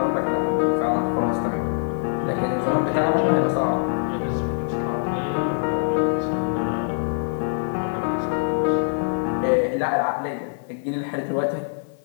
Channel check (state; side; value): silent; right; digital silence